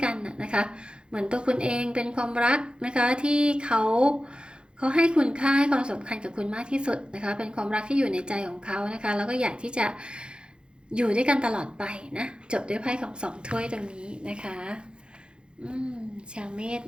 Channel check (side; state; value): left; late; 0.053 ms